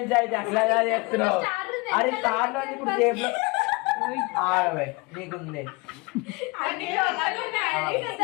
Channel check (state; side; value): quieter; right; 25.8 dB